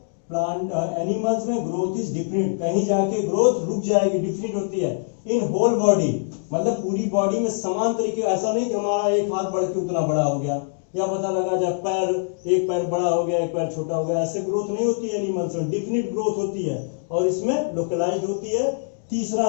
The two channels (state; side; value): silent; right; digital silence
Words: प्लांट एनिमल्स में ग्रोथ इज डिफरेंट, कहीं जाके ग्रोथ रुक जाएगी, डिफरेंट होती है। इन होल बॉडी मतलब पूरी बॉडी में समान तरीके, ऐसा नहीं कि हमारा एक हाथ बढ़ के उतना बड़ा हो गया, या पता लगा जब पैर, एक पैर बड़ा हो गया एक पैर छोटा हो गया, ऐसे ग्रोथ नहीं होती है एनिमल्स में, डिफिनिट ग्रोथ होती है और इसमें लोकलाइज्ड होती है। तीसरा